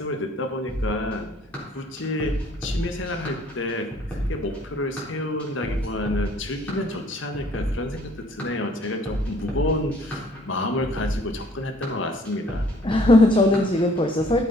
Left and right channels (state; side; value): normal; both; correlation 0.59